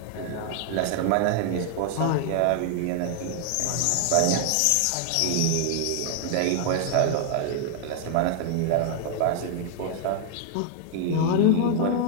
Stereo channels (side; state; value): both; different; correlation 0.00